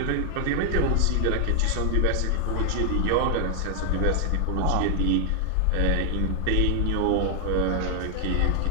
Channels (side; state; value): both; different; correlation 0.00